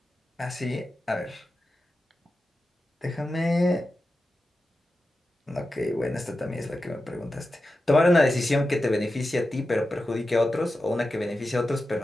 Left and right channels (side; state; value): both; normal; correlation 0.92